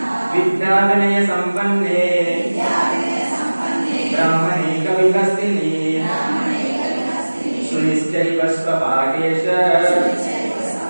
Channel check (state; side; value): inverted; both; correlation -1.00